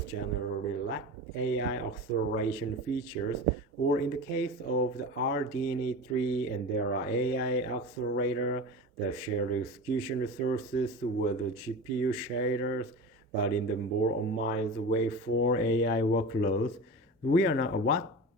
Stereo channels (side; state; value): both; normal; correlation 0.30